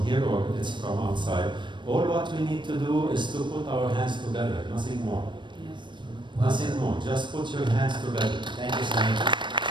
here or it's from outside. All what we need to do is to put our hands together, nothing more. Yes. Nothing more. Just put your hands together. Thank you, Samir.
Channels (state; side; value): late; left; 0.23 ms